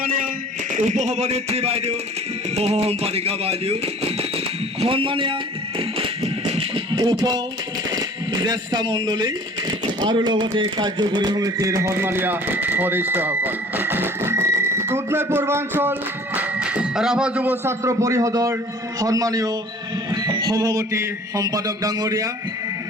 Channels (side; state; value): both; normal; correlation 0.48